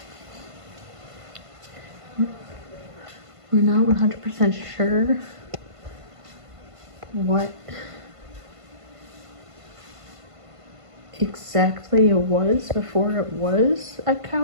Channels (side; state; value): left; late; 1.5 ms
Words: We're not 100% sure what exactly it was before it was a